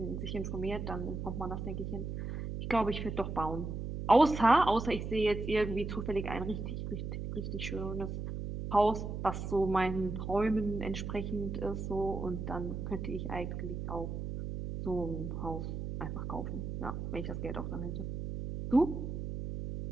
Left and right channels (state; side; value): noise; right; hum, 5 dB below the sound